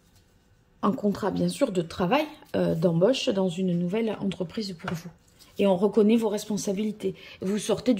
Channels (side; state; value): both; identical; correlation 1.00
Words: un contrat, bien sûr, de travail, d'embauche dans une nouvelle entreprise pour vous. Et on reconnaît vos responsabilités. Vous sortez